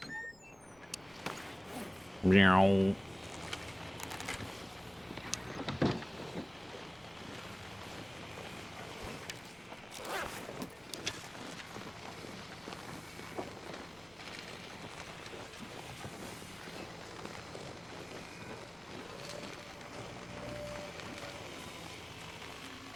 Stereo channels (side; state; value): left; noise; rumble, 27 dB below the sound